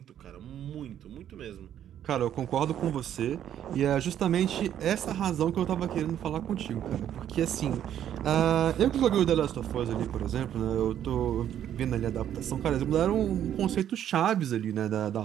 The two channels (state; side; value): quieter; left; 10.4 dB